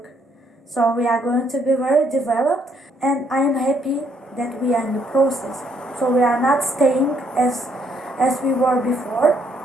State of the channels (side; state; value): both; normal; correlation 0.69